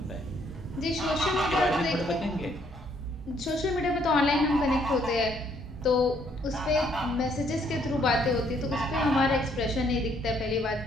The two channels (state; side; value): normal; both; correlation 0.68